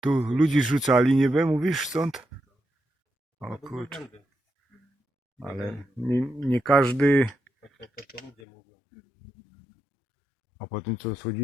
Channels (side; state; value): right; drops out; at 8.3 s